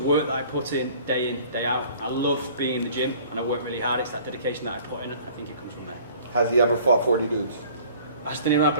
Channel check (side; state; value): both; inverted; correlation -0.51